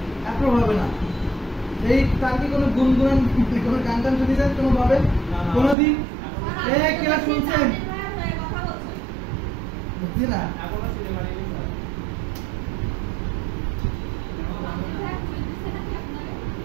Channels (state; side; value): drops out; left; at 5.8 s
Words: অ্যাপ্রুভ হবে না। এই তার কি কোনো গুনগুন, কোনো গান টান শুনেছেন কোনো ভাবে কোনোদিন? কেউ শুনছেন? বুঝছি না।